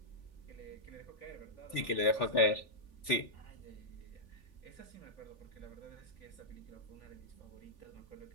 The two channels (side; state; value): right; late; 3.5 ms